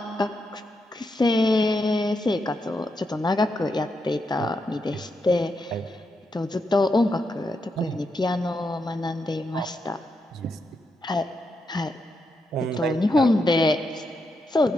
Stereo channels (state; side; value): normal; both; correlation 0.83